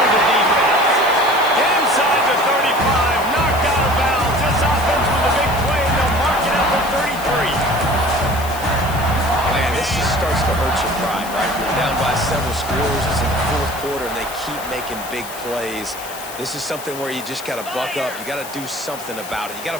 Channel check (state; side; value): noise; left; hiss, 13 dB below the sound